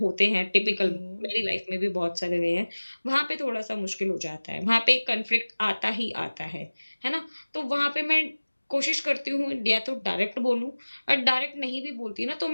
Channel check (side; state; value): both; inverted; correlation -1.00